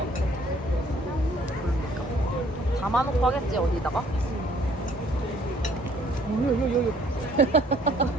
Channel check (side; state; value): both; normal; correlation 0.60